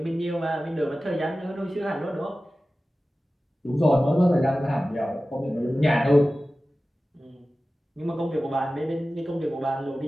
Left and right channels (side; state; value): both; normal; correlation 0.96